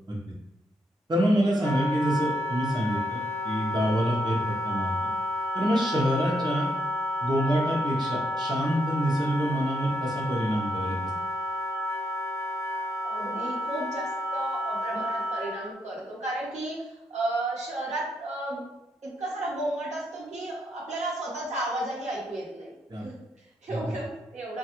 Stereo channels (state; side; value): normal; both; correlation 0.78